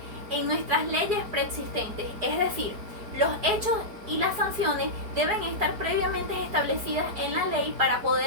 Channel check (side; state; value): left; late; 4.8 ms